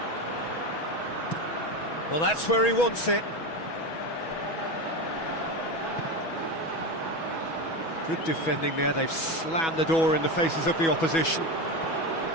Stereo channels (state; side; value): late; right; 6.1 ms